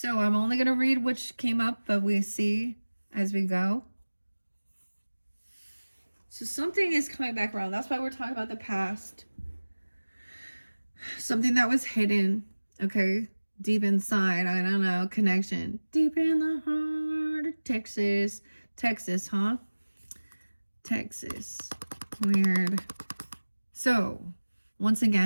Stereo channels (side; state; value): both; inverted; correlation -1.00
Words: I'm only going to read which came up, but we see as we go. So something is coming back around. That's why we're talking about the past. Something that was hidden. Okay. Deep inside, I don't know, connection. Deep in the heart of Texas. Texas, huh? Texas. Weird. So, once